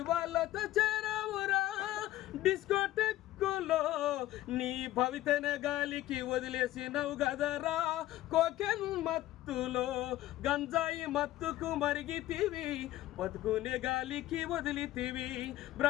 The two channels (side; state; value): right; quieter; 15.2 dB